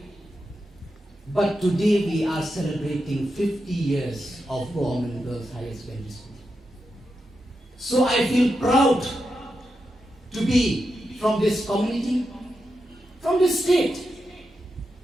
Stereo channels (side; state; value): both; normal; correlation 0.87